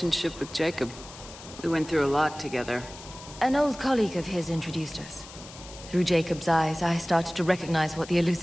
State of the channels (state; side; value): noise; left; hiss, 16 dB below the sound